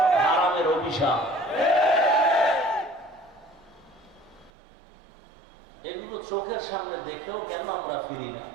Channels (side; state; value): left; drops out; at 4.5 s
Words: হারামের অভিশাপ। চোখের সামনে দেখেও কেন আমরা ফিরি না?